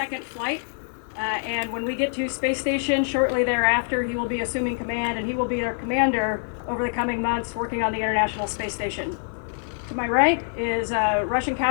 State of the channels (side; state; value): right; silent; 56 dB below the other